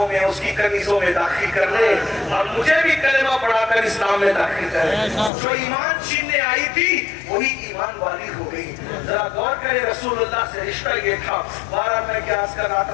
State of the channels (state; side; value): drops out; right; at 5.3 s